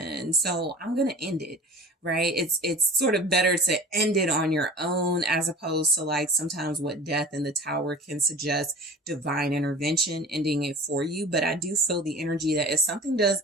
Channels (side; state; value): both; normal; correlation 0.40